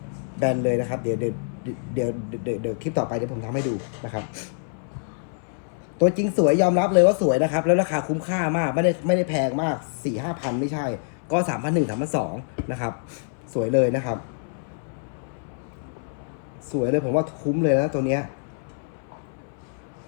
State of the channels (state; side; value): silent; right; 61 dB below the other